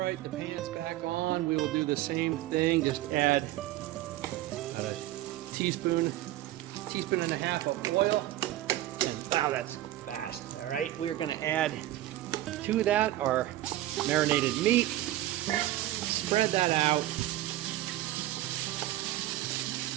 the pan's back on. We will do the same thing. Just add a teaspoon and a half of oil. And wow, that's fast. All right, we're gonna add to that our marinated meat. Spread that out.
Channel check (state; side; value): quieter; left; 15.0 dB